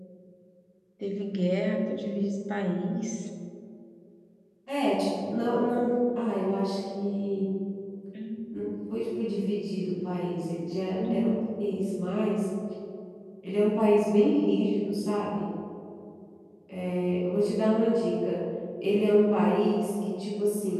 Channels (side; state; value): both; identical; correlation 1.00